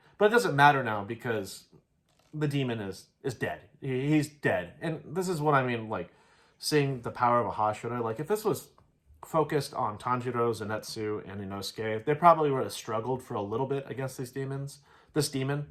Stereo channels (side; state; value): both; identical; correlation 1.00